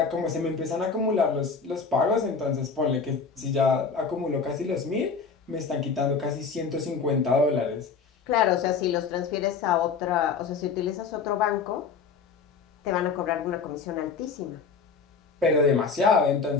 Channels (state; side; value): quieter; right; 5.3 dB